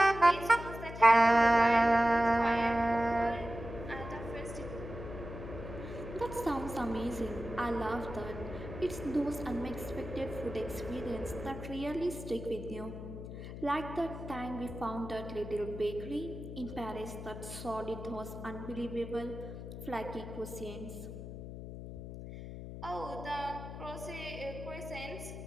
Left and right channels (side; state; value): left; noise; hum, 10 dB below the sound